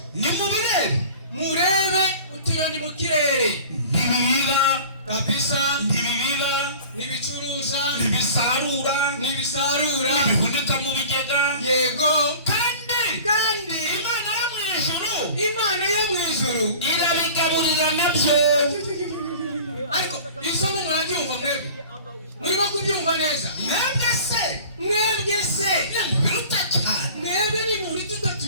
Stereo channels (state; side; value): inverted; both; correlation -0.42